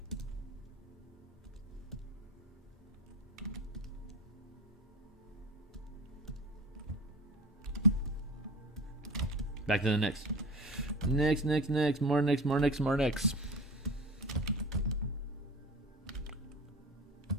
back to the next. Next. More next.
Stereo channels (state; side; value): normal; both; correlation 0.34